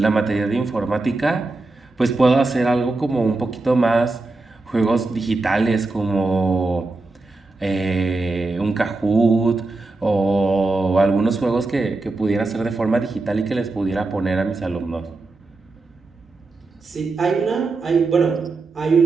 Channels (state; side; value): quieter; left; 3.4 dB